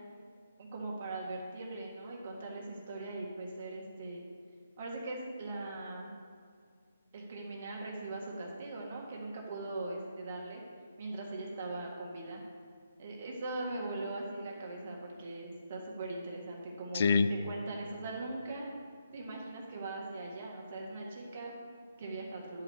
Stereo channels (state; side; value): inverted; both; correlation -0.78